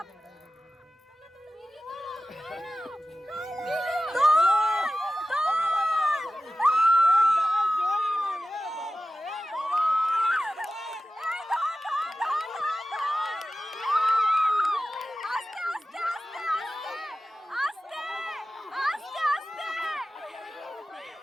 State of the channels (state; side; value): normal; both; correlation 0.94